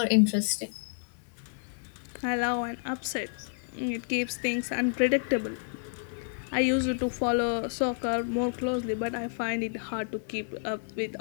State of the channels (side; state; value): right; silent; digital silence